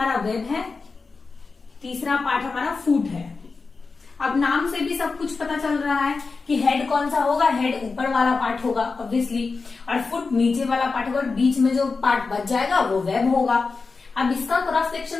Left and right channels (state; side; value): quieter; right; 4.4 dB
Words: वेब है, तीसरा पार्ट हमारा फुट है। अब नाम से भी सब कुछ पता चल रहा है कि हेड कौन सा होगा, हेड ऊपर वाला पार्ट होगा ऑब्वियसली, और फुट नीचे वाला पार्ट होगा, और बीच में जो पार्ट बच जाएगा वो वेब होगा। अब इसका क्रॉस